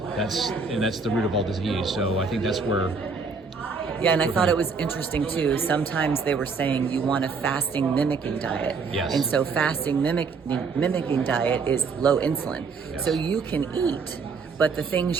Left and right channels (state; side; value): quieter; left; 4.8 dB